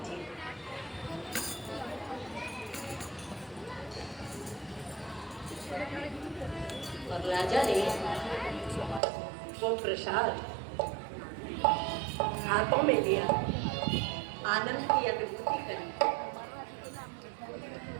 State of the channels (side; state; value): left; drops out; at 9.0 s